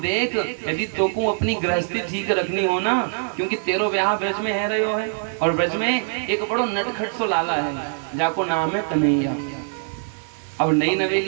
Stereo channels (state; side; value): silent; left; digital silence